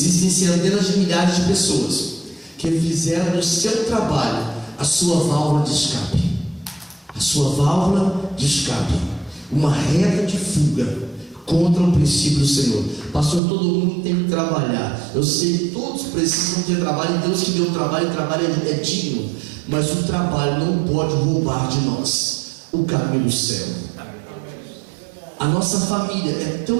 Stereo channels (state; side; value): drops out; left; at 13.4 s